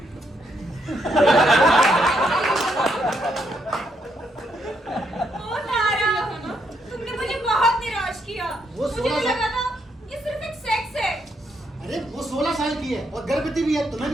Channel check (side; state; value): both; normal; correlation 0.76